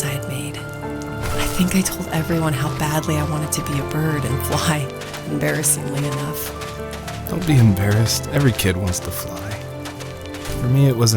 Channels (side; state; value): both; identical; correlation 1.00